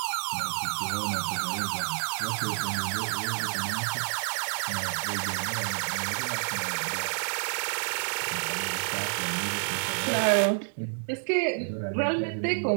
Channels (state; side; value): silent; left; 59 dB below the other